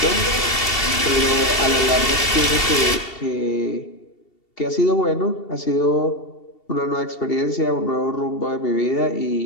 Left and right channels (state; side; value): late; right; 2.7 ms